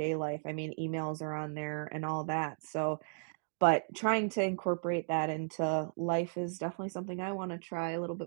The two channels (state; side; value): silent; left; digital silence